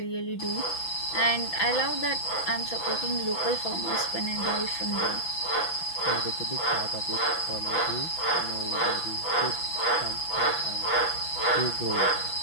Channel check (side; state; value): right; late; 6.0 ms